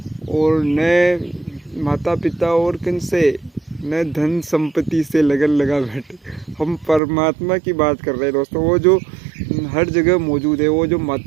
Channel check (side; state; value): left; drops out; at 7.0 s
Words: पिता और किनसे, न धन संपत्ति से लगन लगा बैठे। हम परमात्मा की बात कर रहे हैं दोस्तों, वो जो हर जगह मौजूद है, वो जो